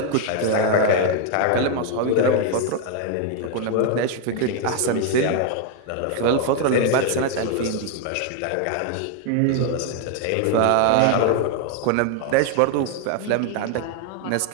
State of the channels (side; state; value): both; different; correlation 0.01